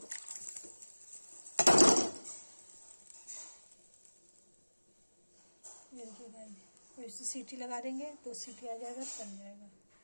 ये देखिए गाइस, और इसे सीटी लगा देंगे तो सीटी आ जाएगा, बन जाएगा।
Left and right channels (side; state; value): both; inverted; correlation -1.00